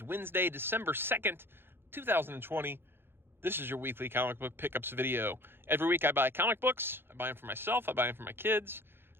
Wednesday, December 2nd, 2020. This is your weekly comic book pickups video. Every week I buy comic books. I buy them for myself, I buy them for my kids.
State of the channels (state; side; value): late; left; 0.11 ms